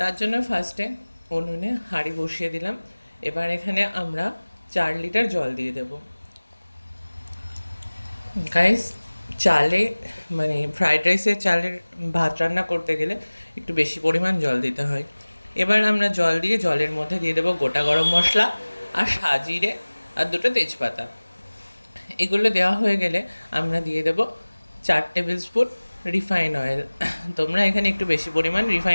জন্য ফার্স্টে উনুনে হাঁড়ি বসিয়ে দিলাম। এবার এখানে আমরা 4 লিটার জল দিয়ে দেব। গাইস, চালে মানে ফ্রাইড রাইসের চালের ভাত রান্না করতে গেলে একটু বেশি পরিমাণ জল দিতে হয়। এবার আমরা জল দিয়ে জলের মধ্যে দিয়ে দেবো গোটা গরম মশলা আর সাজিরে আর 2টো তেজপাতা। এগুলো দেওয়া হয়ে গেলে আমরা দিয়ে দেবো 4 টেবিল স্পুন রিফাইন অয়েল। তোমরা এখানে একটু বেশি পরিমাণ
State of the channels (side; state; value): both; inverted; correlation -1.00